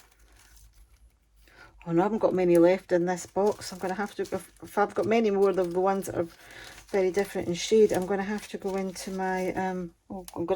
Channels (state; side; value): identical; both; correlation 1.00